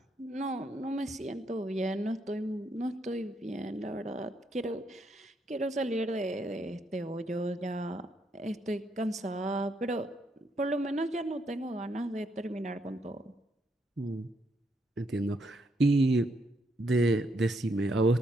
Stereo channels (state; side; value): normal; both; correlation 0.75